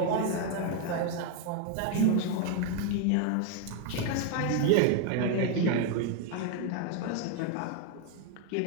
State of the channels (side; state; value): both; different; correlation 0.01